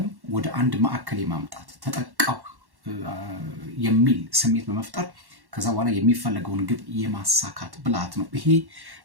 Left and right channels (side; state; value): left; late; 1.1 ms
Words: ወደ አንድ ማዕከል የማምጣት ተጠቃው የሚል ስሜት በመፍጠር ከዛ በኋላ የሚፈለገውን ግብ የማሳካት ብልሃት ነው። ይሄ